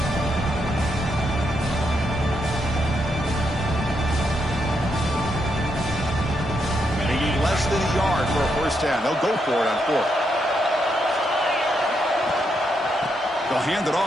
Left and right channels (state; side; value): normal; both; correlation 0.80